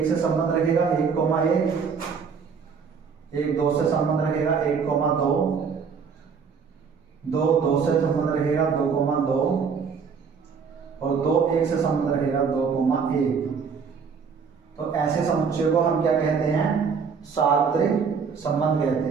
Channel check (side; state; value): left; quieter; 6.0 dB